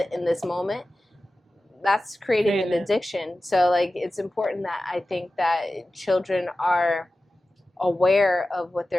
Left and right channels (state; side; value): normal; both; correlation 0.95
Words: in this moment. That's creating an addiction. So, like, it's important that I think that children are aware of what